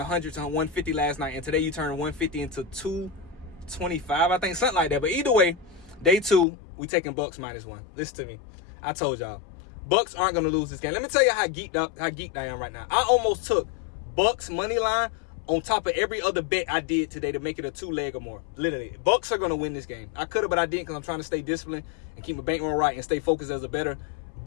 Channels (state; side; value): drops out; right; at 6.5 s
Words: to 150 last night. And today you turn 150 into 225. I think something like that. But either way, day 2, we taking Bucks -1. Listen to me. I told y'all. Bucks aren't going to lose this game. Let me tell you how geeked I am right now. I almost took Bucks money line on top of every other bet I did today to make it a 2-leg or more. Literally, Bucks are going to win this game. I could have, but I didn't because I'm trying to stay disciplined and keep my bankroll right and stay focused as a bettor.